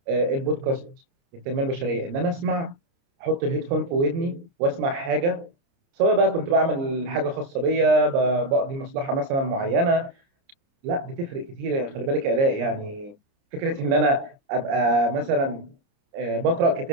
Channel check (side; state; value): left; late; 29 ms